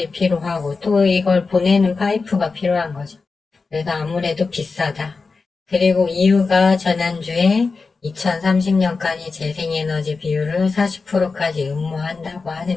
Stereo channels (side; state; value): right; quieter; 4.3 dB